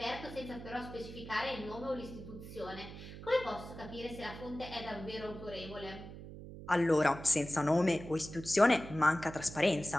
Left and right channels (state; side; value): noise; right; hum, 12 dB below the sound